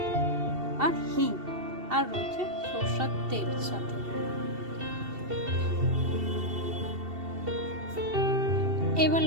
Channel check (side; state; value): left; late; 2.7 ms